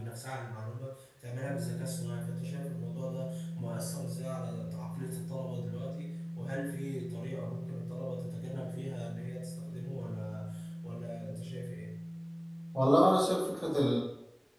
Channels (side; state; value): both; identical; correlation 1.00